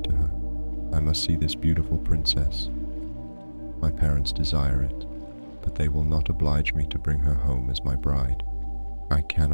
to her. I must see this beautiful princess. My parents desire it, but they will not oblige me to bring her home as my bride. I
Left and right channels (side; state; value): both; inverted; correlation -1.00